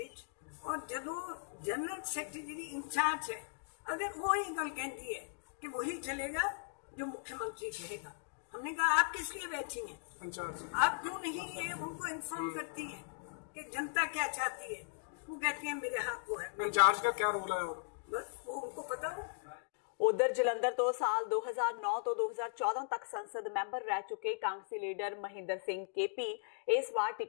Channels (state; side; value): silent; right; digital silence